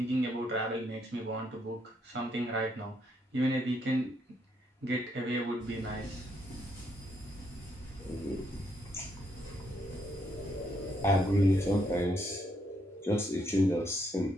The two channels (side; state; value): both; normal; correlation 0.74